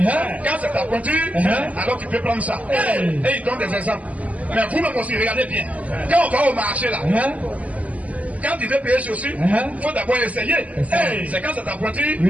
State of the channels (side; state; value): left; late; 0.071 ms